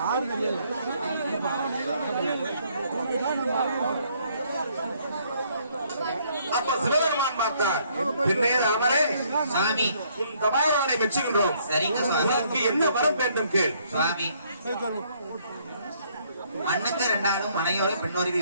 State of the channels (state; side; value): inverted; both; correlation -0.66